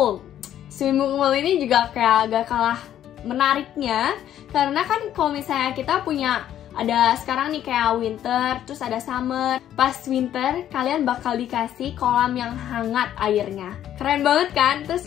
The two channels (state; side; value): quieter; right; 11.1 dB